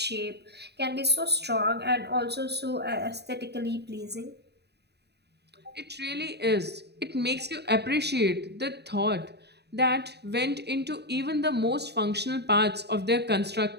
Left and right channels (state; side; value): late; left; 0.48 ms